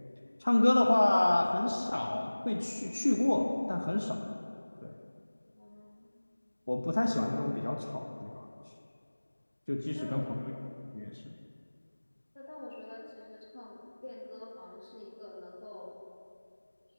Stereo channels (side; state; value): both; inverted; correlation -1.00